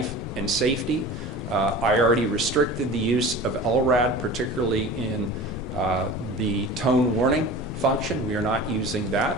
and safety. I already restricted the use of LRAD, particularly in the tone warning function. We are not using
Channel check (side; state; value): both; normal; correlation 0.37